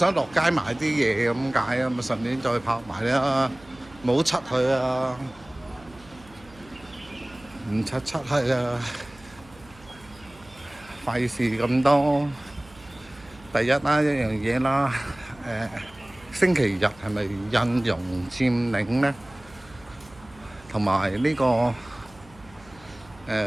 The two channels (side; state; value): right; noise; hum, 24 dB below the sound